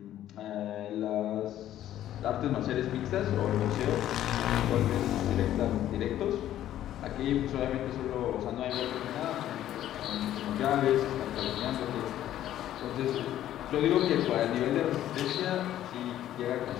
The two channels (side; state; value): right; quieter; 12.3 dB